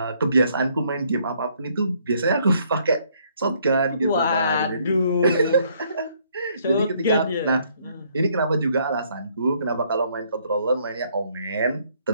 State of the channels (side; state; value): both; inverted; correlation -0.67